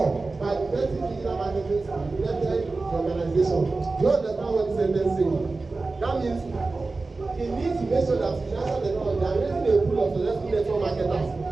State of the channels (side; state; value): left; quieter; 3.6 dB